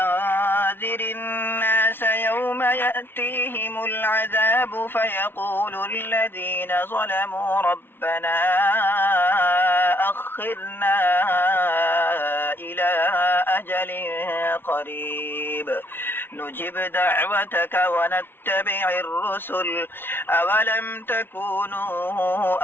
الناس يوم يأتيهم العذاب فيقول الذين ظلموا ربنا أخرنا إلى أجل قريب نجب دعوتك ونتبع الرسل أولم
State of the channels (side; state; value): right; late; 0.11 ms